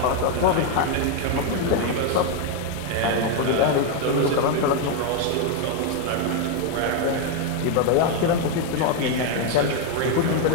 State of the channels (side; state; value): both; different; correlation 0.01